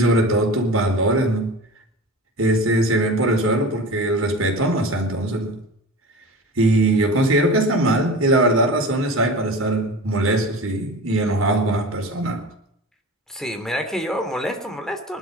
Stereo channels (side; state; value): both; normal; correlation 0.34